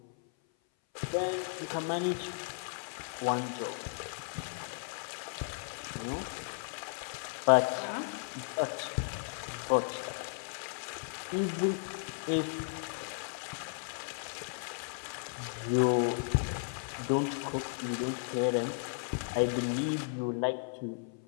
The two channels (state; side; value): silent; right; 54 dB below the other